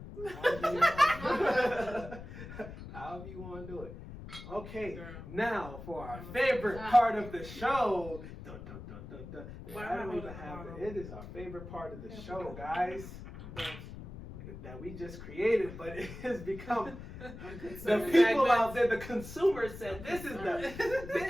However you want to do it. Okay, Girl. now for our favorite part of the show. Dun, dun, dun, dun, dun. Why I don't am I even have holding it. It is our favorite part of the show, guys. That we just created, but it has become the people out there, the consumers said this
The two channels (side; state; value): left; noise; rumble, 12 dB below the sound